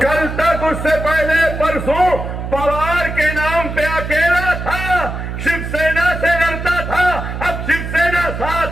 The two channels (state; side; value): noise; right; hum, 6 dB below the sound